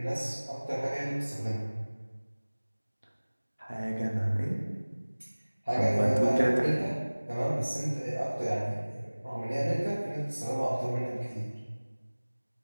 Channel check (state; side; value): inverted; both; correlation -1.00